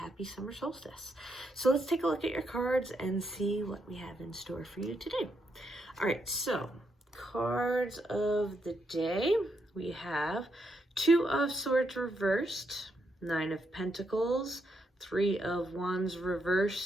summer solstice. So let's take a look at your cards and see what we have in store for you today. All right, so cards of the day. We have Two of Swords reversed, Nine of Pentacles, Three of Wands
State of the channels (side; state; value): both; normal; correlation 0.79